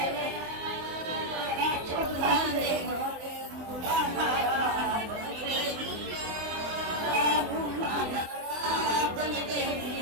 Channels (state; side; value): late; left; 24 ms